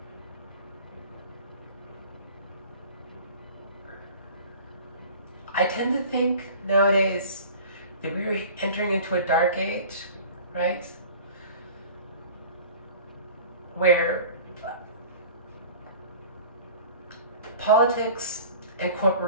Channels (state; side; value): inverted; both; correlation -0.42